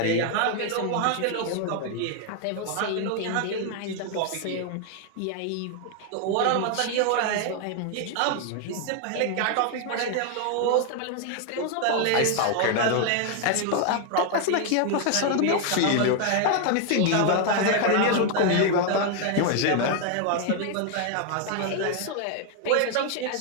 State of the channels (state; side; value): different; both; correlation 0.00